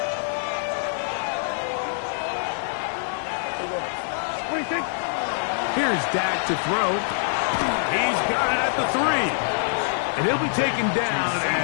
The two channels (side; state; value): right; silent; digital silence